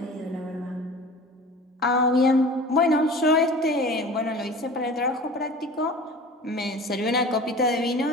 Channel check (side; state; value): both; normal; correlation 0.40